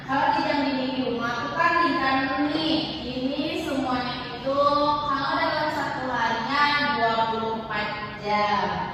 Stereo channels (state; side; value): identical; both; correlation 1.00